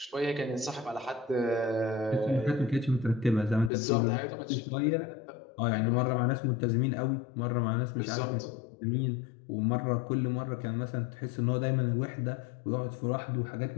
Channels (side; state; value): right; drops out; at 3.7 s